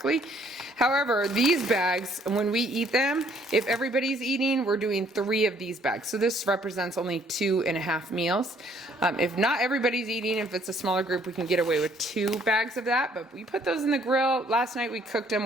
However, these bags, when we eat them, if everybody's eating, we're doing 3 of these bags. So this represents only 2.5 meals. If not everybody's eating, if it's a smaller group, we can get away with 2 bags of that. But we put those in the grill. Last night we cooked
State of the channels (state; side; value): normal; both; correlation 0.63